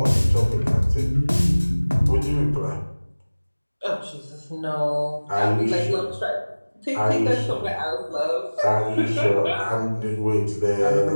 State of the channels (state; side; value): inverted; both; correlation -1.00